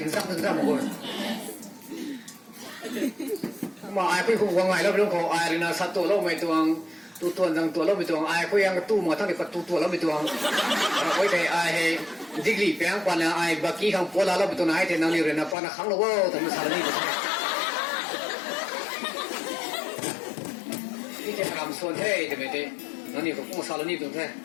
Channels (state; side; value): drops out; right; at 15.6 s